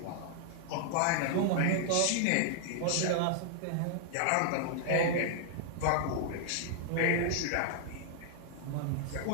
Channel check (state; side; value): different; both; correlation -0.01